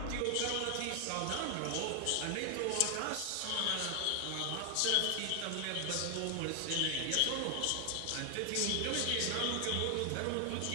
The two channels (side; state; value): both; different; correlation 0.00